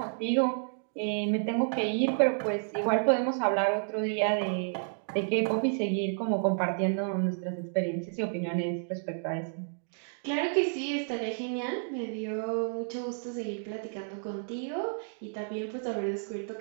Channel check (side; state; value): left; silent; digital silence